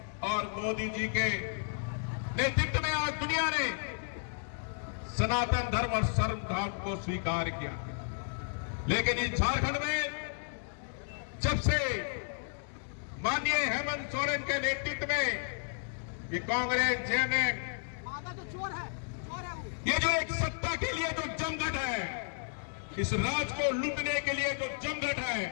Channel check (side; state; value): right; silent; digital silence